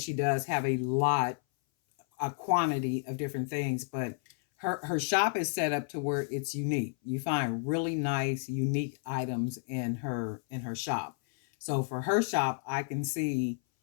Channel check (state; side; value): silent; right; 57 dB below the other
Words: does have a quantity of different things. But her shop is set up to where it's unique. You find really nice, unique items in her shop. So for her shop, I can see